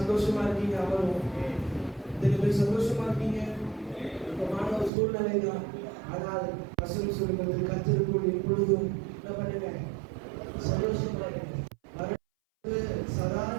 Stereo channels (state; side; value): drops out; left; at 4.9 s